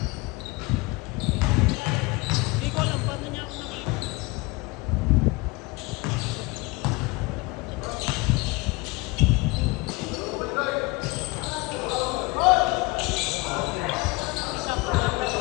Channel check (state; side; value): quieter; right; 24.2 dB